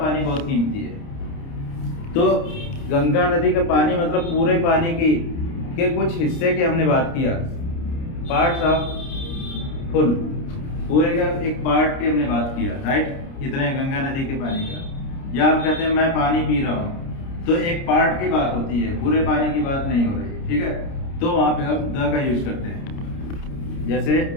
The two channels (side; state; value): right; late; 29 ms